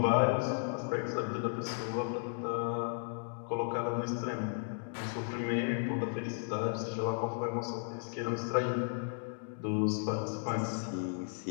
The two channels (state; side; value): silent; right; digital silence